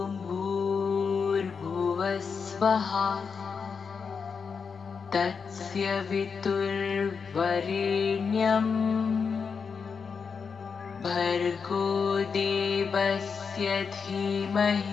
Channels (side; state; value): right; quieter; 5.7 dB